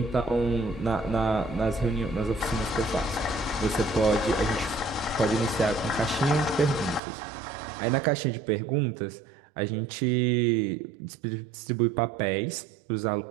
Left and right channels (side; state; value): left; drops out; at 7.0 s